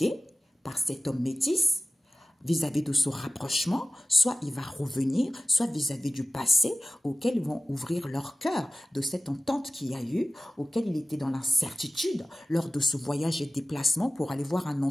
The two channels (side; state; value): both; normal; correlation 0.95